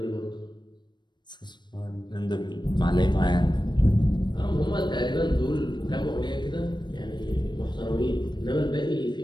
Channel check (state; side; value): late; right; 0.22 ms